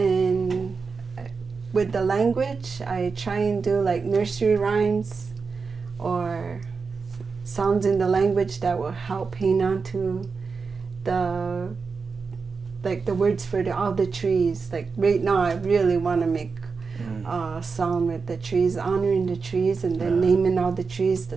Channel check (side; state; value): left; quieter; 4.9 dB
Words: with the language, I try and do like nursery rhymes or sounds in the language that will help hang on to the words for all the trees. Like right now, I really want to make a song with the trees, honoring the trees, and then naming all the trees,